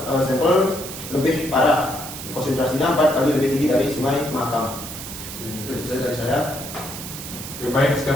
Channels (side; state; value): right; noise; hiss, 10 dB below the sound